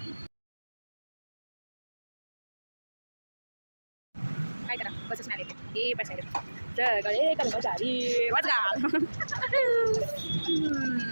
काय करा बसच नाही येते. हे पॅसेंजर सगळे कर्मचारी वाजगा.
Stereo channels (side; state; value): both; inverted; correlation -1.00